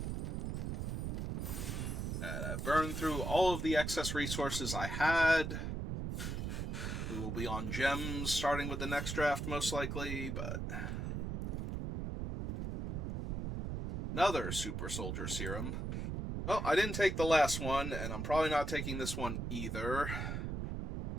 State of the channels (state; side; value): noise; right; rumble, 3 dB below the sound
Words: I burned through all of the excess resources I had. We will be on gems starting with the next draft, most likely, but... Another Super Soldier Serum. Well, I didn't take the last one, and I'm probably not taking this one either.